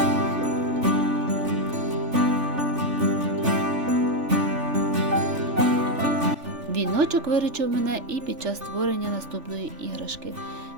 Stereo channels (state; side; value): late; left; 3.4 ms